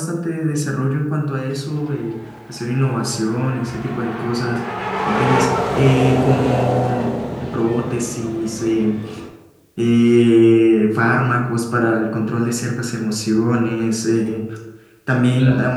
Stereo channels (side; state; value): both; identical; correlation 1.00